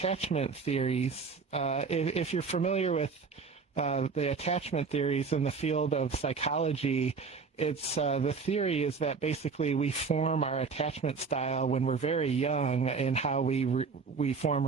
theories. If you're familiar with the attachment theories in the field of psychology, it's the theory is that basically we form our attachment style when we're very young in how we form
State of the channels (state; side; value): quieter; left; 5.0 dB